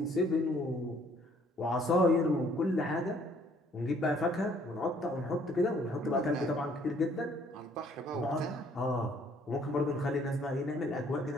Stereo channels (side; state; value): both; normal; correlation 0.62